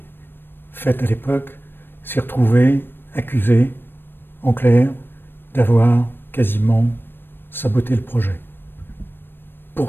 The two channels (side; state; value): right; late; 0.098 ms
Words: faites à l'époque, s'est retrouvé accusé, en clair, d'avoir quasiment saboté le projet.